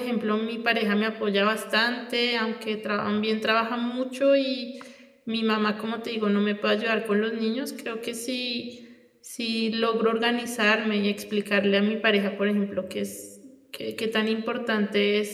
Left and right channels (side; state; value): both; identical; correlation 1.00